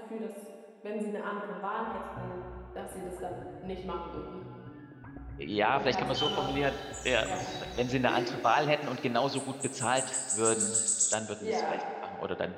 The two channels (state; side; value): identical; both; correlation 1.00